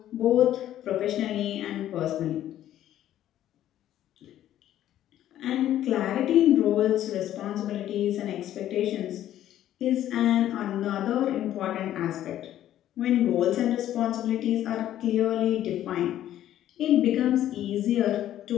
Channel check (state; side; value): quieter; right; 12.2 dB